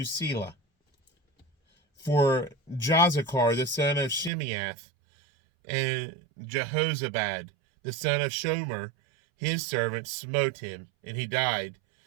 Selah. For Jozachar the son of Shimeath, and Jehozabad the son of Shomer, his servant, smote him, and he died.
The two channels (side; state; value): left; drops out; at 4.3 s